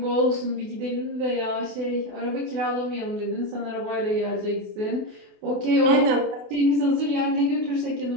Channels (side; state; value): left; late; 28 ms